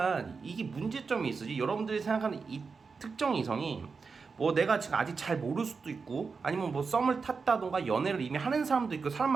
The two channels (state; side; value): quieter; left; 4.9 dB